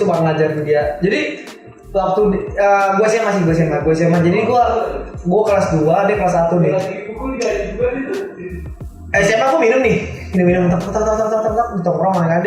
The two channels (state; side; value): identical; both; correlation 1.00